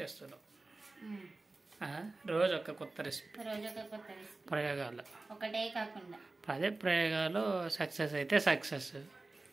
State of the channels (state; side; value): quieter; left; 3.3 dB